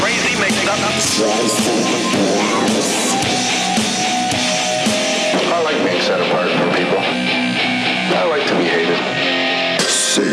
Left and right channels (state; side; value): identical; both; correlation 1.00